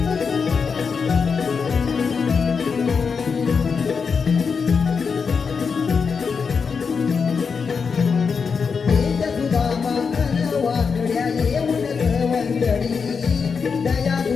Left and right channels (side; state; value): right; quieter; 5.6 dB